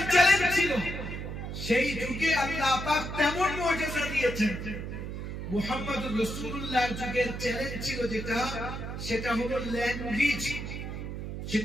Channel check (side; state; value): right; noise; hum, 6 dB below the sound